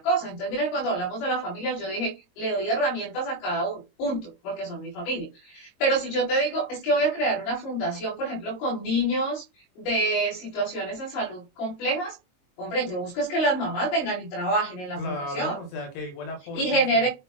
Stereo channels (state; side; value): late; right; 22 ms